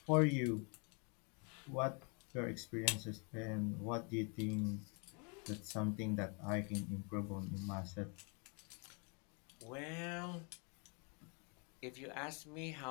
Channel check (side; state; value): right; quieter; 35.3 dB